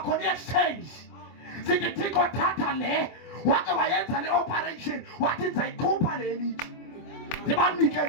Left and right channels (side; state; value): right; late; 24 ms